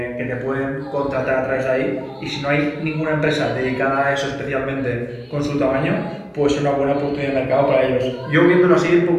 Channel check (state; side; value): identical; both; correlation 1.00